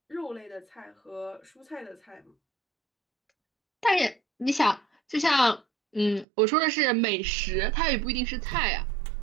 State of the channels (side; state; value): left; drops out; at 6.2 s